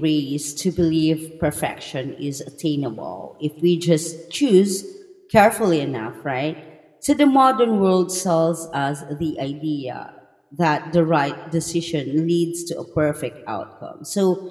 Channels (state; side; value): identical; both; correlation 1.00